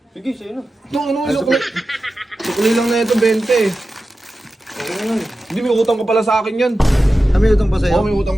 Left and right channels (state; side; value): normal; both; correlation 0.93